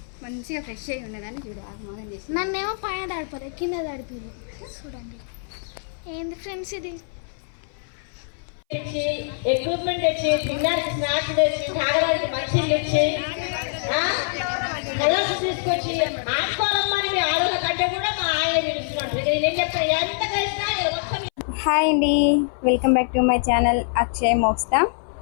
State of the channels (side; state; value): right; silent; 60 dB below the other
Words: మంచిగా ఫ్రెష్ అయి ఉన్నదని చూడు ఆగమాగం చేసి. నన్నేమో పైన దాడిపోలేదు, కింద దాడిపోయారు. చూడండి ఏంది ఫ్రెండ్స్ ఇది. ఎక్విప్మెంట్ తెచ్చి, తినడానికి స్నాక్స్ తెచ్చి, తాగడానికి మంచిలు తెచ్చి, కలర్స్ తీసుకొచ్చి ఆడుకోవాలమ్మని మీ ఆడోళ్ళ కంటే కూడా మా ఆయన పిలుస్తున్నాడు. నేను చెప్తాను ఎంత కలిసినా. హాయ్ అండి, welcome back to my channel Akshay Moksta.